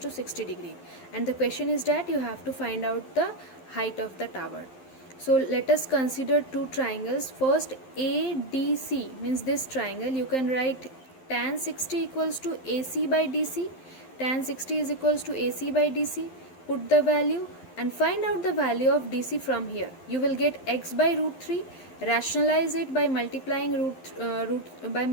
60 degree. And the question is that you have to find out the height of the tower. So let us consider two triangles. First, ADC means this triangle. You can write tan 60 equals to AC by DC. Tan 60 is equals to AC by DC. Put the value and find out the value of DC from here. You will get x by root 3. Rationalize it by multiplying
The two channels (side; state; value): right; late; 12 ms